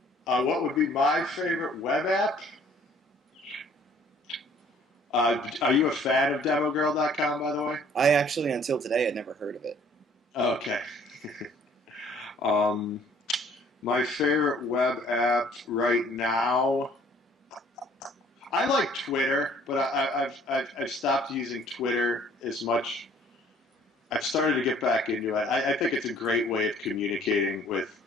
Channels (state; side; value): normal; both; correlation 0.57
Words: What would be my favorite web app? Are you a fan of demogirl.com, by the way? I actually, until today, had never heard of it. Okay. Um, my favorite web app right now, I like Twitter, but I've stopped using Twitter as much. I've started to get back into it. I think it's a great way of communicating with